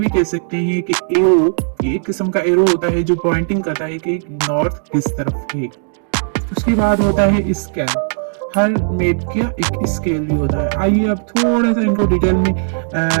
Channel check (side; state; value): left; silent; digital silence